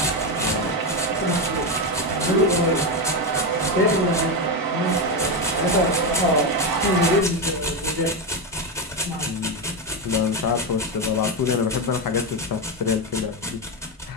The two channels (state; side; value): normal; both; correlation 0.10